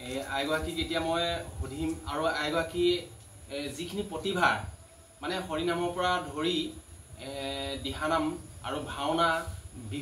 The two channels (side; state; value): both; identical; correlation 1.00